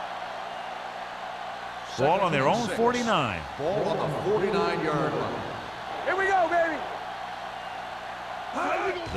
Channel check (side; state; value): both; identical; correlation 1.00